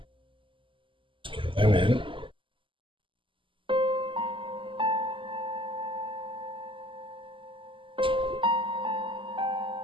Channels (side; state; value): left; late; 0.25 ms